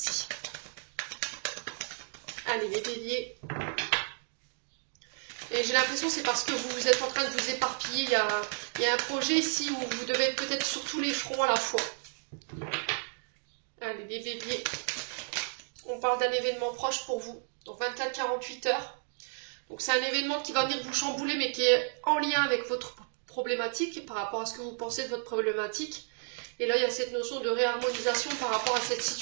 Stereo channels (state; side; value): silent; left; 56 dB below the other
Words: Allez, les béliers. Et j'ai l'impression que c'est parce que vous êtes en train de vous éparpiller. Il y a un projet ici où vous devez être peut-être sur tous les fronts à la fois. Allez, les béliers. On parle d'un événement proche pour vous. Donc 24-48 heures. Donc c'est un événement qui va venir vous chambouler, mais qui est en lien avec votre problématique, par rapport à ce que vous pensez de votre problématique. Et là, il y a cette notion de réharmonisation par rapport à cette